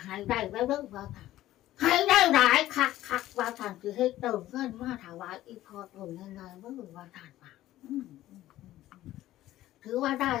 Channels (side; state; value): right; quieter; 14.6 dB